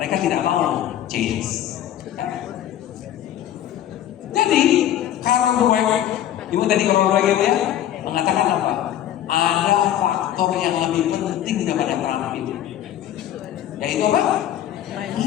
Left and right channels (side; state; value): right; quieter; 11.6 dB